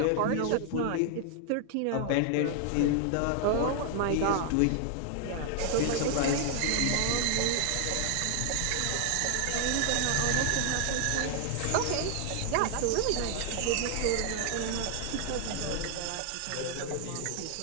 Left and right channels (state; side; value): different; both; correlation 0.00